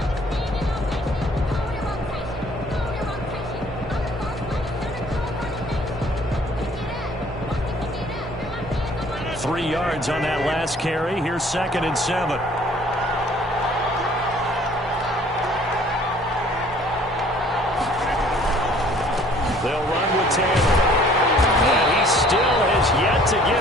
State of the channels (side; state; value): both; normal; correlation 0.56